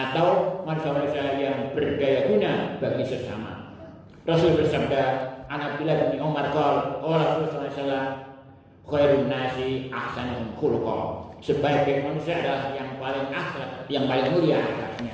manusia-manusia yang berdaya guna bagi sesama. Rasul bersabda, "An Abdullah bin Umar qala, qala Rasulullah sallallahu alaihi wasallam, khairun nasi ahsanuhum khuluqa." Sebaik manusia adalah yang paling akhlak, yang paling mulia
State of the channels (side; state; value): both; identical; correlation 1.00